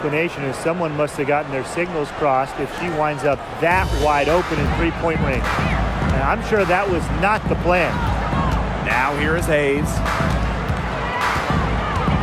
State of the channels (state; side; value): identical; both; correlation 1.00